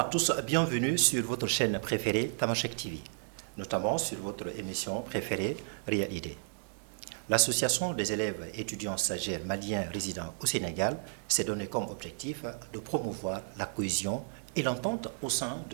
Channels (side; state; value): left; silent; digital silence